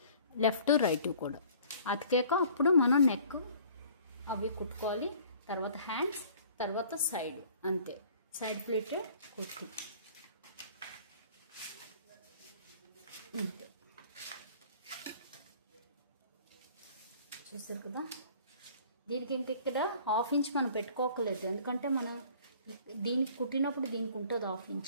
లెఫ్ట్ రైట్ కూడా అతికాక అప్పుడు మనం నెక్ అవి కుట్టుకోవాలి. తర్వాత హ్యాండ్స్, తర్వాత సైడ్, అంతే. సైడ్ ప్లేటెడ్ కుర్తీ ఇంతే. చూసారు కదా. దీనికి ఇంక ఇక్కడ 1/2 ఇంచ్ మనం పెట్టుకోకలేదు, ఎందుకంటే మనం దీనికి కుట్టినప్పుడు దీనికి ఉంటుంది 1/2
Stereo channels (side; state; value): both; inverted; correlation -0.52